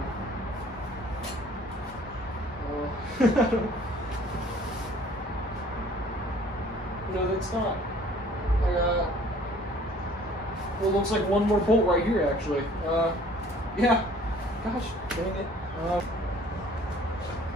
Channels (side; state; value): both; normal; correlation 0.53